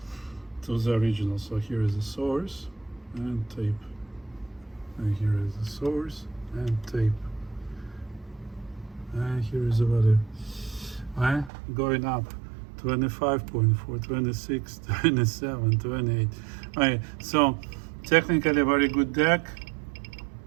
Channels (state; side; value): drops out; left; at 11.5 s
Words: to the original. So here is the source and tape, and here is the source and tape, and here is the value. Going up 25.4, 26, 27, 28. So technically very good deck,